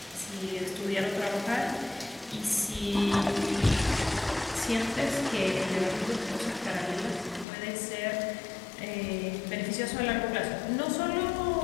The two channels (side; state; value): right; drops out; at 7.5 s